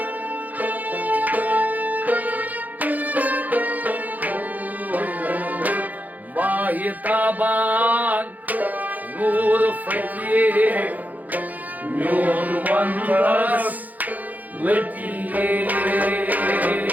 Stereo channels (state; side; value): late; left; 0.080 ms